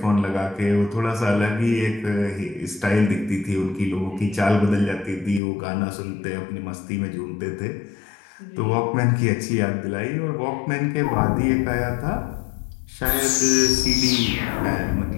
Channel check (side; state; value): right; drops out; at 5.4 s